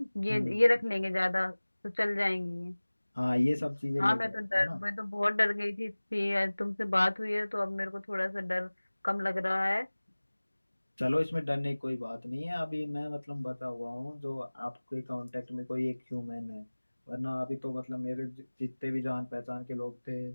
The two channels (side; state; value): both; inverted; correlation -1.00